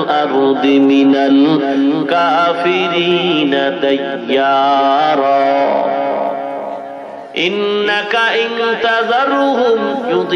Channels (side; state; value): both; identical; correlation 1.00